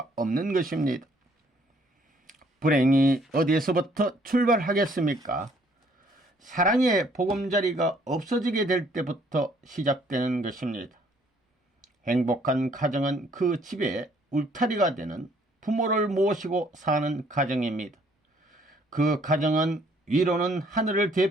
없는 것입니다. 불행이 어디에서부터 출발하겠습니까? 사랑의 보금자리가 없어지게 될 때부터 시작되는 것입니다. 행복한 가정은 그 집의 울타리가 되는 부모를 모시고 사는 가정입니다. 그 가정은 위로는 하늘을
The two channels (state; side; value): normal; both; correlation 0.63